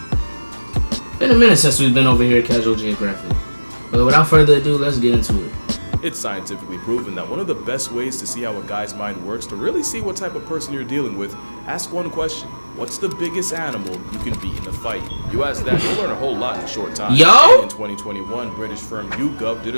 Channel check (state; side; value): inverted; both; correlation -1.00